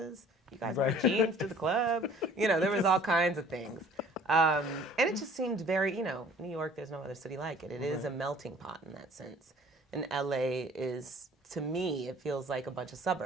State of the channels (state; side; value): normal; both; correlation 0.52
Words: You guys wear jeans to the club. You know, there was all kinds of things. And it just seemed very, you know, New York, there's no other city like it. It is a melting pot in that sense. And LA is, to me, it feels like a bunch of